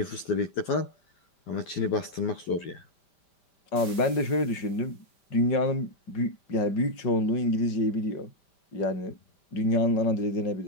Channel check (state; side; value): late; right; 5.1 ms